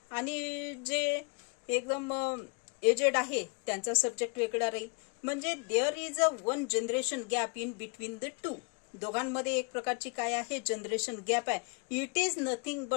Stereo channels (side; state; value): right; quieter; 34.2 dB